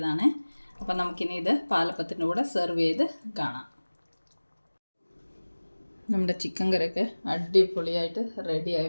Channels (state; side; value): inverted; both; correlation -1.00